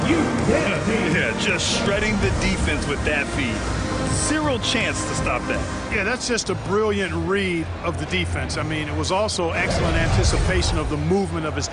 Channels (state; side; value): identical; both; correlation 1.00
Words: Yeah, just shredding the defense with that feed. Zero chance to stop that. Yeah, that's just a brilliant read of the defense. I mean, it was also excellent anticipation of the movement of his